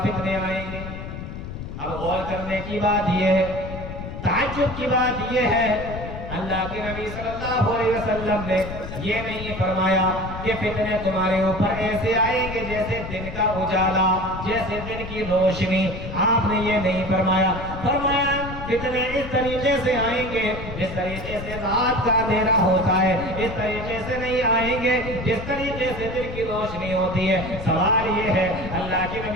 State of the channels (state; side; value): noise; left; rumble, 9 dB below the sound